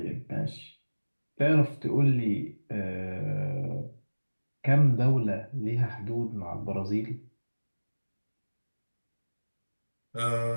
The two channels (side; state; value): both; inverted; correlation -1.00